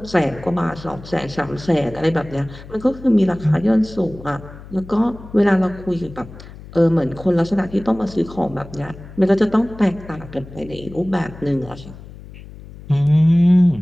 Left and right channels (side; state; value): left; noise; hum, 17 dB below the sound